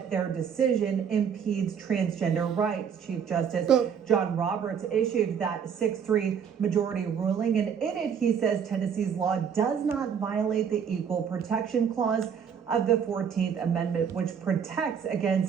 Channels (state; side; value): quieter; left; 7.4 dB